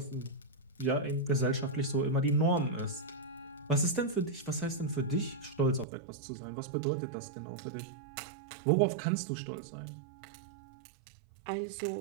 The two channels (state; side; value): drops out; left; at 5.9 s